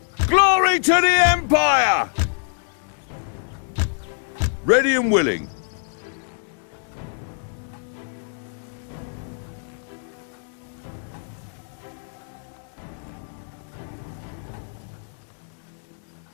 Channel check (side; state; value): right; silent; digital silence